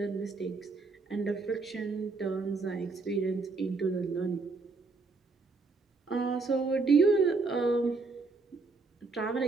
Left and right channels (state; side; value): quieter; left; 4.0 dB